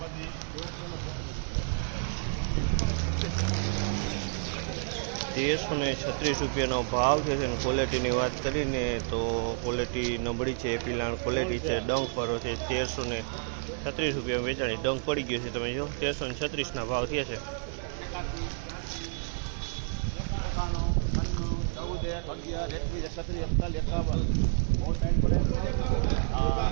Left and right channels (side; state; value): left; silent; digital silence